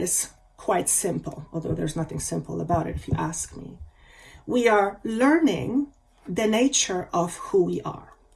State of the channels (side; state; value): both; identical; correlation 1.00